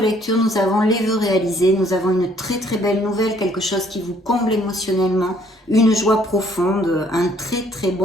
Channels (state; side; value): normal; both; correlation 0.63